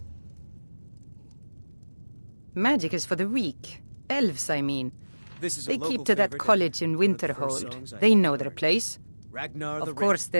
Magic is for the weak. Elves, I mean. They keep to that college in Winterhold. They know their place. Of course,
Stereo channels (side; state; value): both; inverted; correlation -1.00